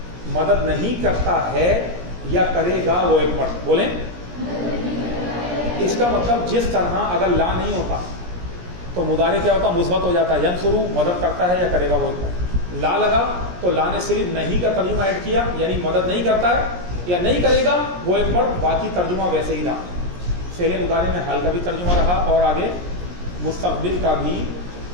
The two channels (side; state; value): left; late; 17 ms